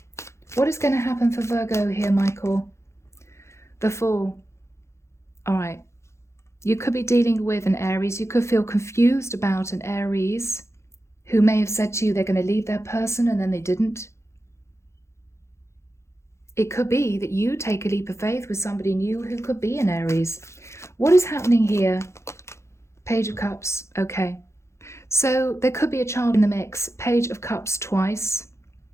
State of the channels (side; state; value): right; late; 0.13 ms